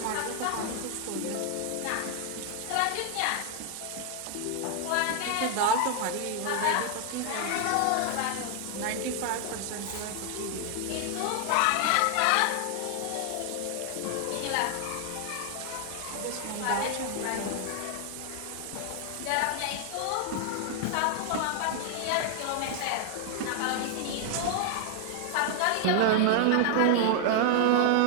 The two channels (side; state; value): both; different; correlation 0.00